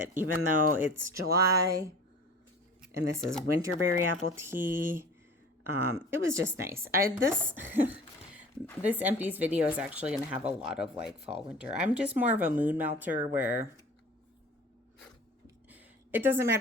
Even though it's July, and this is Winterberry Apple Tea, it was just nice. This empties video is actually going to have a lot of like fall, winter. I'm just more of a mood melter where it doesn't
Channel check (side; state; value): both; normal; correlation 0.42